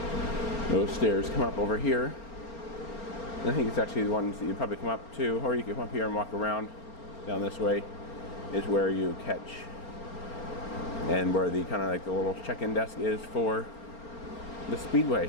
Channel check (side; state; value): right; late; 4.4 ms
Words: Those stairs come up over here. And I think it's actually the ones that you probably come up to, or you can come up here and walk around down this way, is where you catch, and where the kind of like the little check-in desk is for the